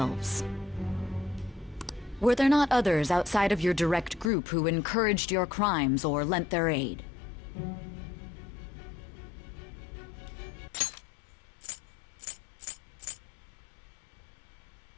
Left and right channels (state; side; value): drops out; right; at 4.3 s